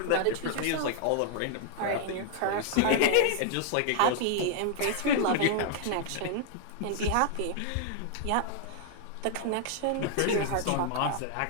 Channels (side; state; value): both; different; correlation 0.00